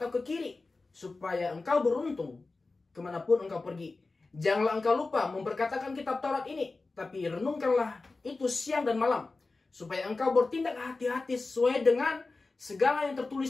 ke kiri, supaya engkau beruntung kemanapun engkau pergi. Janganlah engkau lupa memperkatakan kitab Taurat ini, tapi renungkanlah itu siang dan malam, supaya engkau bertindak hati-hati sesuai dengan segala yang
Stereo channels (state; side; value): quieter; right; 3.6 dB